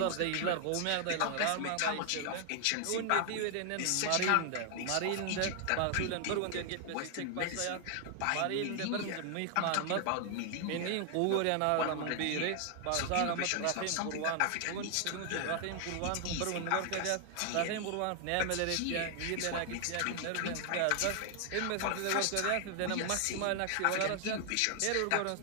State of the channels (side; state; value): both; different; correlation 0.00